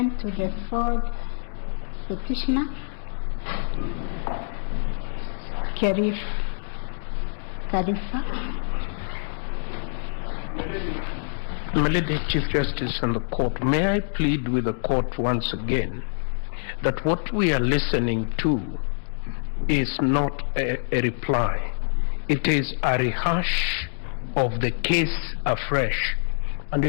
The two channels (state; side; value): silent; right; digital silence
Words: to the fourth petitioner, Khalifa. My Lady Chief Justice and the court, may I plead with the court once again that what we are listening to is not a reply. It is a rehash of the case afresh, and